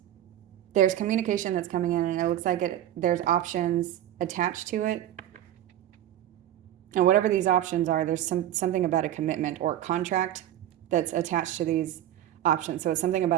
there's communication that's coming in, and it looks like there's options attached to it. And whatever these options are, there's something about a commitment or contract that's attached to these options. So it's something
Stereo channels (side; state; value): left; quieter; 12.1 dB